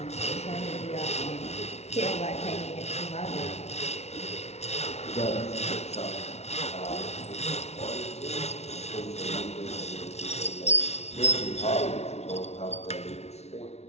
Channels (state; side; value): late; right; 0.31 ms